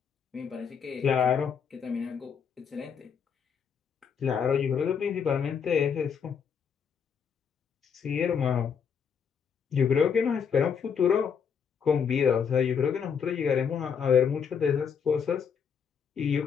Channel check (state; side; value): quieter; right; 6.9 dB